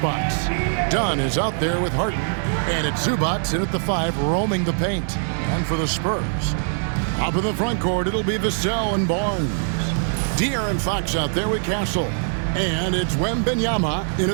Dunn is out there with Harden. And it's Zubac in at the 5, roaming the paint. And for the Spurs, up in the front court, it'll be Vassell and Barnes. De'Aaron Fox out there with Castle. And it's Wembanyama in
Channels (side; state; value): left; silent; 64 dB below the other